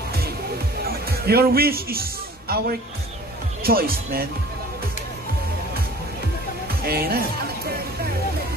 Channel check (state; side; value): normal; both; correlation 0.47